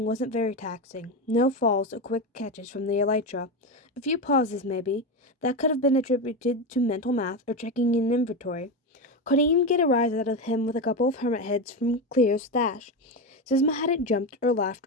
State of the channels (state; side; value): normal; both; correlation 0.15